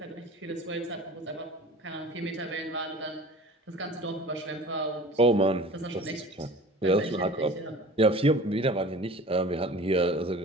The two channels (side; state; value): both; normal; correlation 0.41